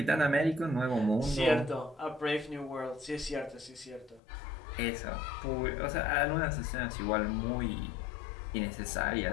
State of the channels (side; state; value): right; drops out; at 4.2 s